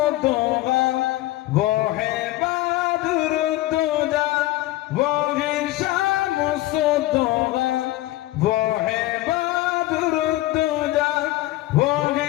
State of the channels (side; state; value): right; quieter; 17.2 dB